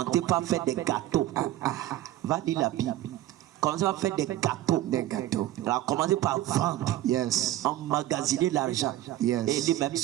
par faire des gâteaux. Va dire la Bible. Commencé à faire des gâteaux. Elle a commencé par vendre. Yes. Emmagasiner l'argent. Yes. Et lui-même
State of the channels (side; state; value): left; quieter; 14.4 dB